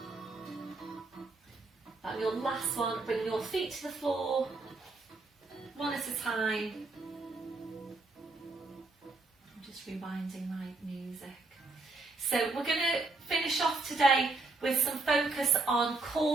And your last one, bring your feet to the floor, one at a time. I'm just rewinding my music. So we're going to finish off today with some focus on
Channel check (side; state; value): left; quieter; 3.5 dB